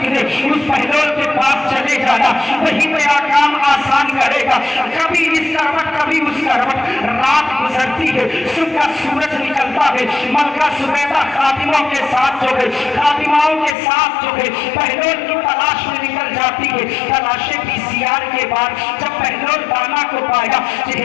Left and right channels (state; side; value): drops out; right; at 13.8 s